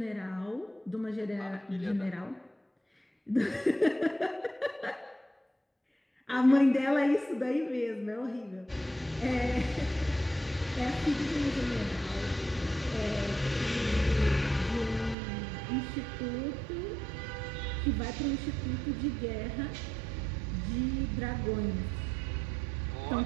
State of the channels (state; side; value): drops out; left; at 15.2 s